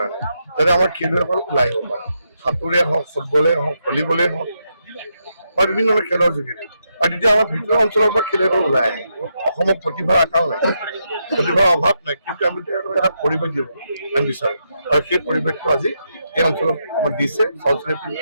যাতে আমাৰ খেলুৱৈসকল ওলাই আহিব পাৰে। সাঁতোৰে হওক, ফুটবলে হওক, ভলীবলেই হওক বা বিভিন্ন ধৰণৰ খেলৰ যোগেদি। আৰু তেতিয়া আমাৰ ভিতৰুৱা অঞ্চলৰ পৰা খেলুৱৈসকল ওলাই আহে। অসমত প্ৰতিভাৰ আকাল নাই, প্ৰতিভাৰ অভাৱ নাই, কিন্তু আমি তেওঁলোকক এটা পৰিৱেশ দিব আমি বিচাৰোঁ। আৰু সেই পৰিৱেশটো আজি এই অঞ্চলত আমাক দিছে, চলচলিত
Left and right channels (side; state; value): both; inverted; correlation -0.82